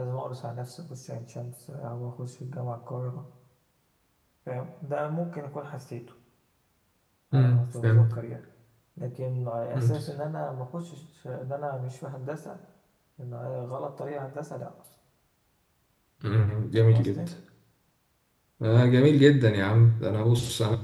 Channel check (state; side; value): identical; both; correlation 1.00